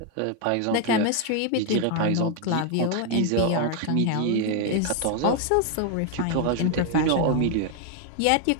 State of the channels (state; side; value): different; both; correlation 0.01